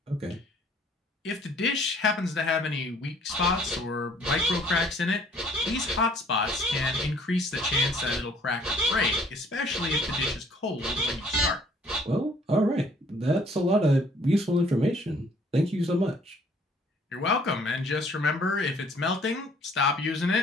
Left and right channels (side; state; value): both; normal; correlation 0.59